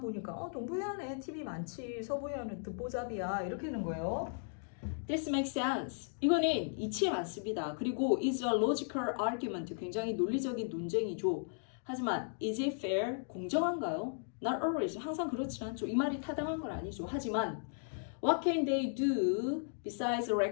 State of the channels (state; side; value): silent; right; digital silence